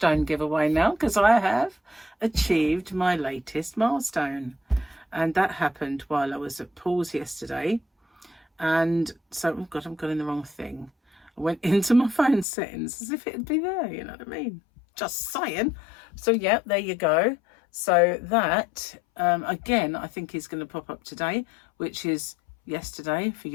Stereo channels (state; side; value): drops out; right; at 12.5 s